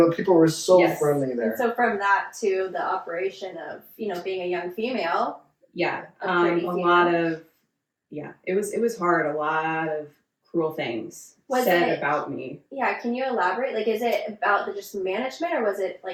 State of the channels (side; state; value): both; identical; correlation 1.00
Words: people were so friendly there. And so from that to the operation of being a young female. Yeah. A pretty lot of it was hard. A lot of cruel things said about me. Yeah, can you elaborate? Like, is it about the just management, or was it